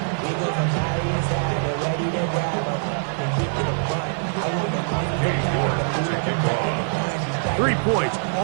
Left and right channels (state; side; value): silent; left; digital silence